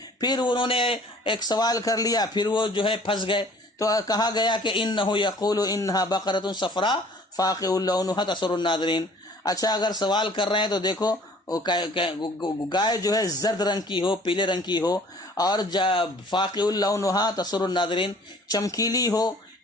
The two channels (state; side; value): normal; both; correlation 0.52